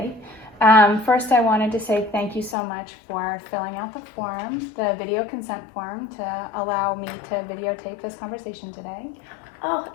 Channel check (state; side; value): drops out; right; at 2.6 s